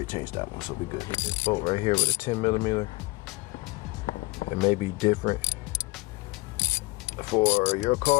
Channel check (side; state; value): right; quieter; 24.1 dB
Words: changed that one, so we good. This bolt right here with a 10mm. It may be different for your